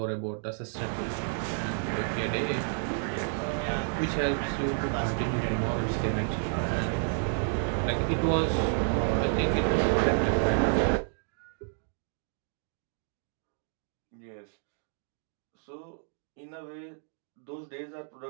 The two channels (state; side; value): silent; left; 57 dB below the other